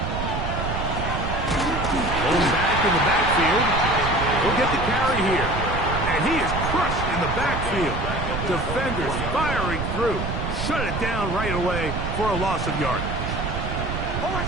Going back in the backfield. He'll get the carry here, and he is crushed in the backfield. Defenders firing through. Shut it down right away for a loss of yardage.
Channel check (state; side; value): noise; right; rumble, 3 dB below the sound